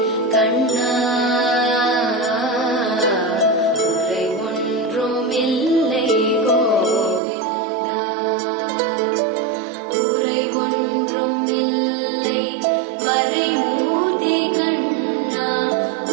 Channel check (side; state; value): left; drops out; at 7.2 s